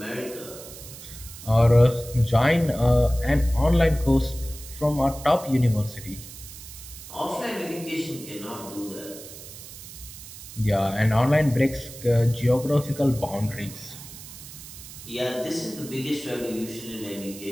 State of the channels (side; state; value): right; noise; hiss, 15 dB below the sound